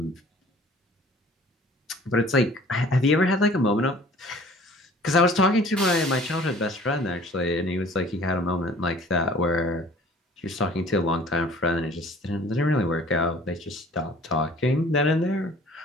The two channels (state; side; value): normal; both; correlation 0.50